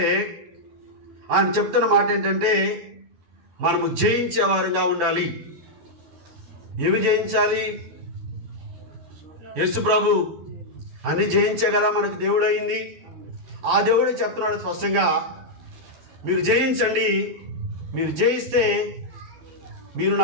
ఆయన చెప్తున్న మాట ఏంటంటే, మనము జయించేవారుగా ఉండాలి. ఏమి జయించాలి? యేసు ప్రభు అన్ని జయించే కదా మనకు దేవుడు అయింది. ఆ దేవుడే చెప్తున్నాడు స్పష్టంగా, మీరు జయించండి, మీరు జయిస్తే మీరు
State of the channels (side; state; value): left; late; 12 ms